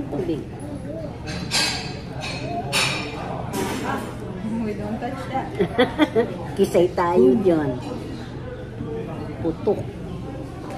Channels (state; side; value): identical; both; correlation 1.00